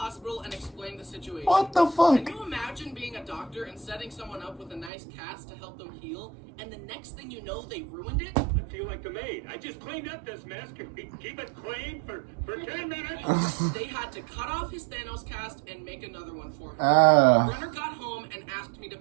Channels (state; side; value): drops out; left; at 4.9 s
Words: and explained the situation. What the fuck? Can you imagine being a doctor and setting someone up with a nice cast to help them heal, and the next thing you know, they ruined it? I feel like the maid. I just cleaned up this mess. Can we keep it clean for 10 minutes? They had to cut off his Thanos cast and make another one for him. Brenner got home and asked me to